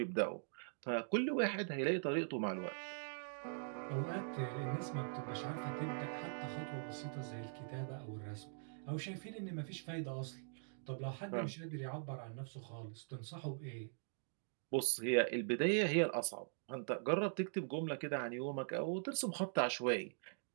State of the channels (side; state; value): left; silent; digital silence